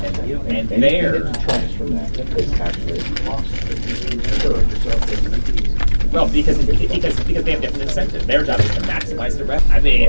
And anything there- that detracts from that is actually a cost. Well, because they have different incentive. Their job is to maximize the revenue. I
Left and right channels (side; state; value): both; inverted; correlation -1.00